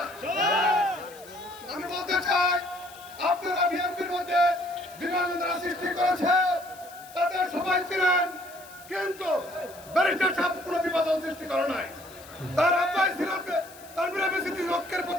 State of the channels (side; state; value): left; noise; hiss, 20 dB below the sound